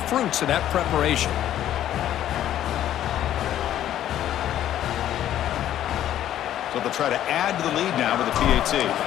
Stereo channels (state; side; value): quieter; right; 11.8 dB